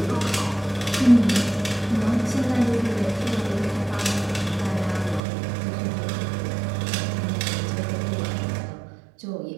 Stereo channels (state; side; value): drops out; left; at 5.2 s